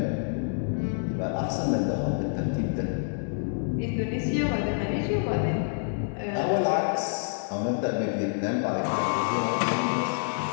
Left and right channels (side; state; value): right; silent; digital silence